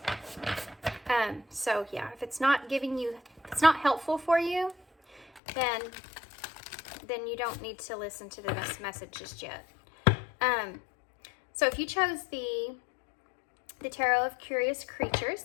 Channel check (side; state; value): right; drops out; at 5.4 s